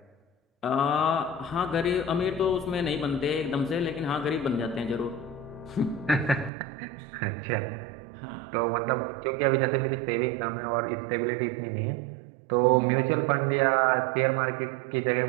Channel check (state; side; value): drops out; left; at 6.5 s